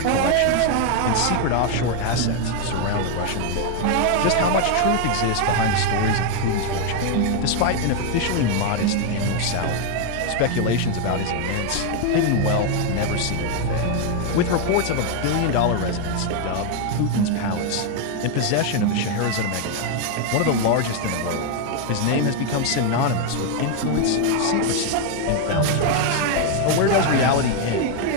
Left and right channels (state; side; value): different; both; correlation 0.01